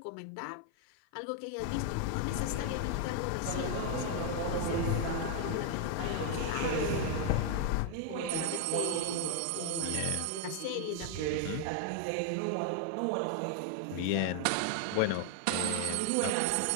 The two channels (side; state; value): both; different; correlation 0.00